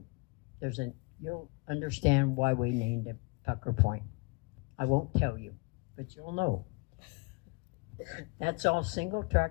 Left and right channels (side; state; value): right; quieter; 29.8 dB